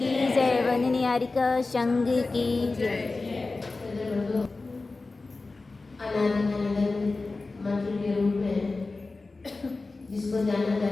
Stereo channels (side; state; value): right; quieter; 3.6 dB